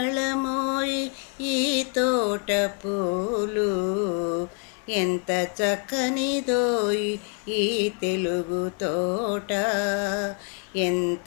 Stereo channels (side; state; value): right; quieter; 33.7 dB